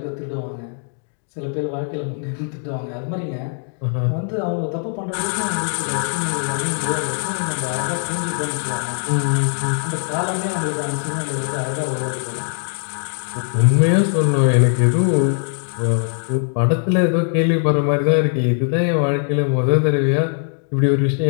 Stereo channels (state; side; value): silent; right; 57 dB below the other